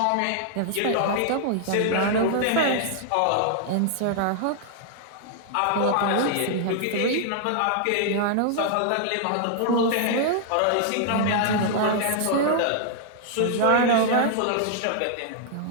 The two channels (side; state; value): both; different; correlation -0.01